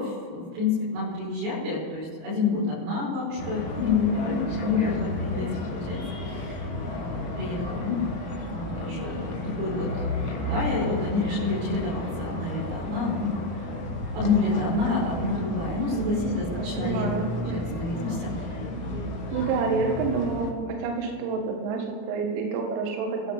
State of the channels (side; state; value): left; late; 34 ms